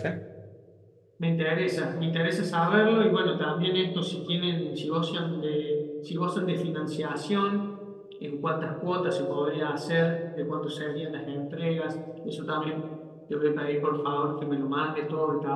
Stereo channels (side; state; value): both; identical; correlation 1.00